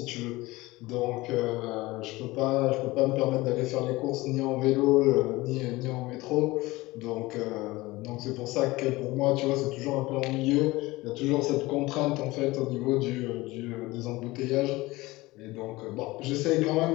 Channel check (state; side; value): quieter; right; 20.3 dB